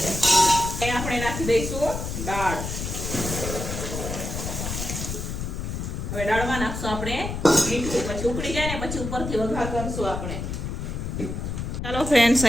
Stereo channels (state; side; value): noise; left; rumble, 4 dB below the sound